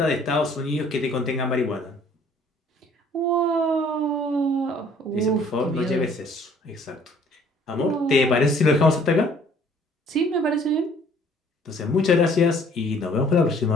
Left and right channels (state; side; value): normal; both; correlation 0.57